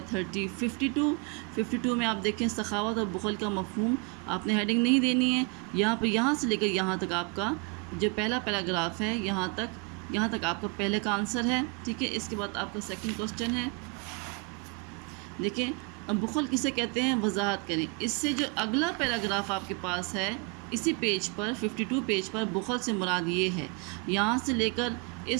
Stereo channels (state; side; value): quieter; left; 32.1 dB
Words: 52 میں آپ دیکھیں سخاوت اور بخل کا مفہوم۔ آپ نے ہیڈنگ نہیں دینی ہے، یہاں سے لے کر یہاں تک آپ کا جو پہلا پیراگراف ہے، یہاں تک آپ کا پہلے کا آنسر ہے، ٹھیک ہے۔ اس کے بعد آپ کا سیکنڈ کوسچن ہے، دیکھیں بخل کسے کہتے ہیں، وضاحت کریں۔ اس سے جو اگلا پیراگراف آپ کے پاس ہے اسی پیج پر 52 پیج پر، بخل سے مراد یہ ہے، یہاں سے لے کر